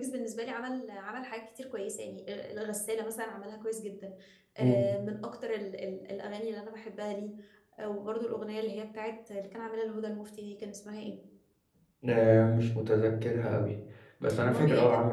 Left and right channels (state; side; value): identical; both; correlation 1.00